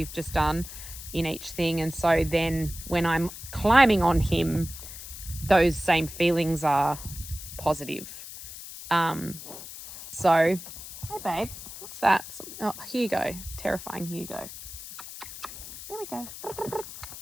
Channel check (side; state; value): left; noise; hiss, 12 dB below the sound